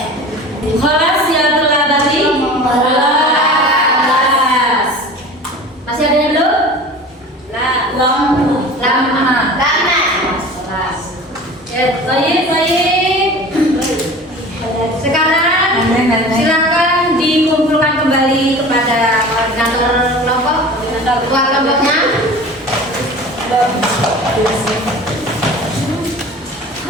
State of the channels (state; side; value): normal; both; correlation 0.39